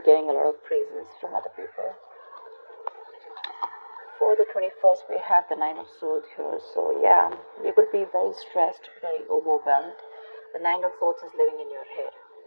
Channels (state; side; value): inverted; both; correlation -1.00